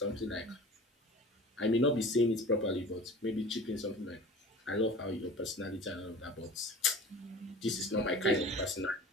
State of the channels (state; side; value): normal; both; correlation 0.40